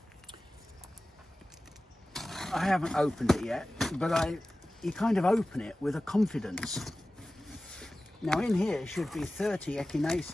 I haven't opened it yet, but you kind of open it with a confidence. Now in here should be 30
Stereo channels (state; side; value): normal; both; correlation 0.96